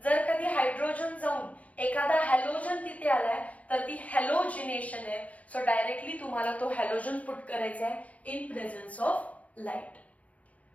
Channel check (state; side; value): late; right; 0.068 ms